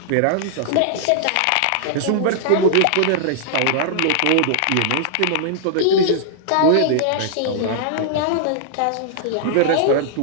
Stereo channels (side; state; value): both; different; correlation -0.01